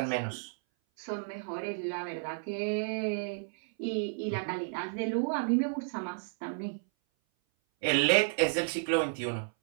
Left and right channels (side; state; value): left; silent; 56 dB below the other